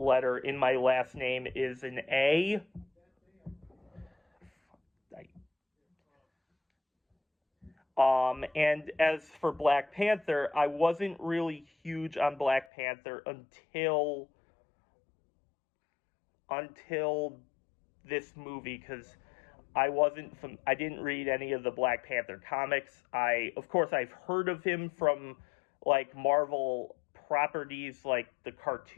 in my last name is an A. And as for Black Panther, I wasn't really huge on Black Panther until this movie, because I didn't read any of the Black Panther comics. Of course, I've heard of him from like Marvel properties, like the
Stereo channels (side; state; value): right; drops out; at 12.7 s